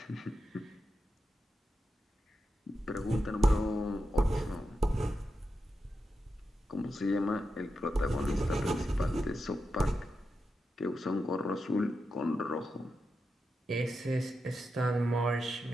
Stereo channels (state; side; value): normal; both; correlation 0.88